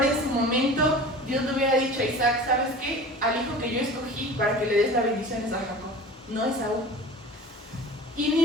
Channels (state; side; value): normal; both; correlation 0.38